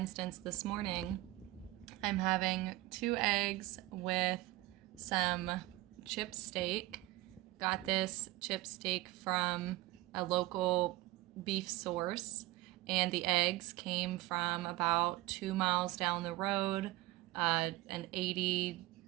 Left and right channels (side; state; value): left; quieter; 18.4 dB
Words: this morning I'm having 2 eggs with some chip steak. Got this chip steak from a local beef source, and the eggs came from about 2 miles down the road. An